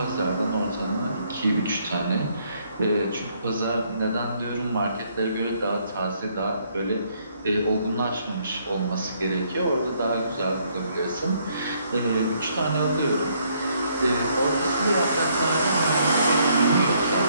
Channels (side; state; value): both; inverted; correlation -0.69